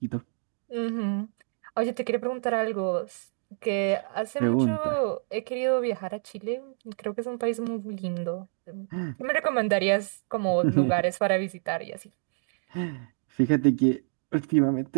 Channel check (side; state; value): left; silent; digital silence